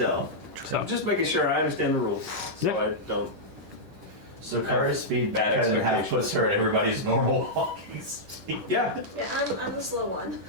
so. I'm just making sure I understand the rules. So Yeah. I don't. So Kara's speed Bad cut in half expectations. puts her at everybody's normal walking speed. Yeah. Yeah, I'm the slow one.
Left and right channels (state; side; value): late; left; 10 ms